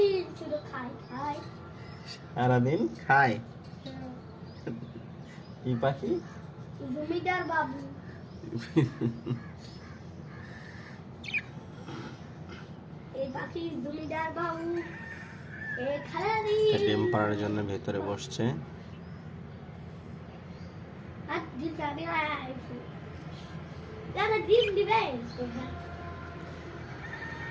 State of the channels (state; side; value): identical; both; correlation 1.00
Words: সারাদিন খায় কি পাখি? জমিদার বাবু। এই পাখি জমিদার বাবু ডিম পাড়ার জন্য ভেতরে বসছে। ডিম দিবে